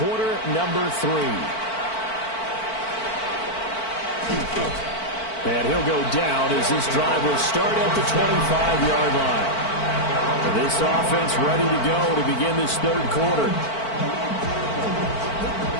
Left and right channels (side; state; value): right; late; 4.5 ms